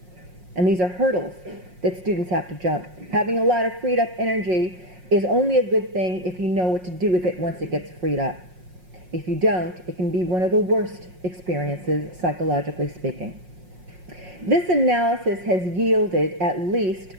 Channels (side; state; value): left; late; 5.5 ms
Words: And these are hurdles that students have to jump. Having a lot of freed up energy is only a good thing if you know what to do with it once it gets freed up. If you don't, it can be one of the worst experiences, psychologically speaking. This analysis has yielded at least